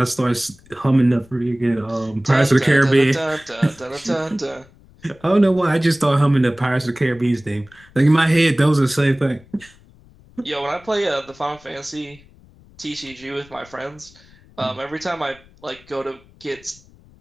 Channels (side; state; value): left; noise; rumble, 26 dB below the sound